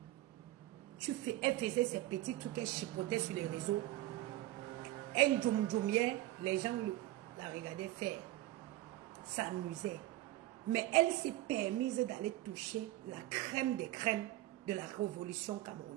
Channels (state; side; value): quieter; left; 16.1 dB